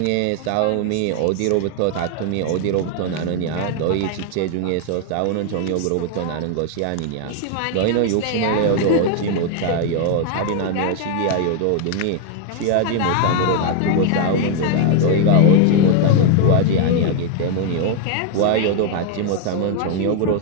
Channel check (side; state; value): both; different; correlation 0.00